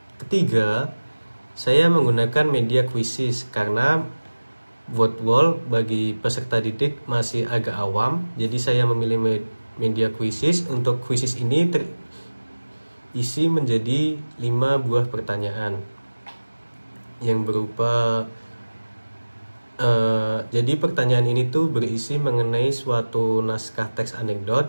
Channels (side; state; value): both; inverted; correlation -1.00